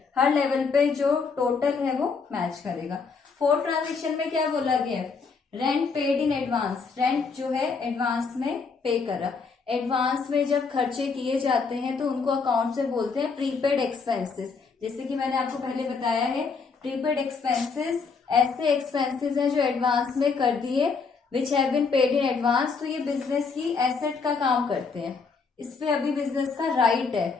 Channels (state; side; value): quieter; right; 5.0 dB